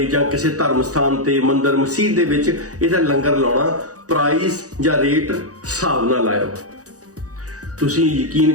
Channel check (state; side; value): late; left; 0.67 ms